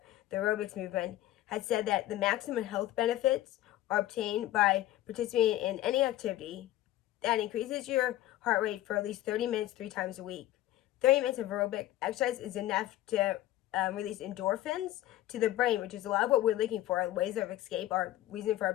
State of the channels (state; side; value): quieter; right; 14.6 dB